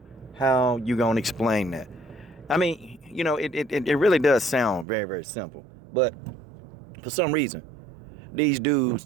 How you gonna explain that? I mean, you know, it really does sound very, very simple. But for some reason, these dudes,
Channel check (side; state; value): left; drops out; at 4.9 s